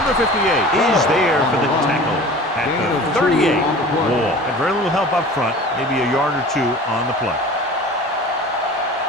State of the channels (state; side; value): normal; both; correlation 0.40